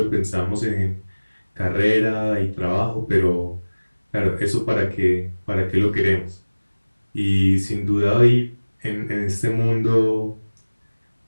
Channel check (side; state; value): both; inverted; correlation -1.00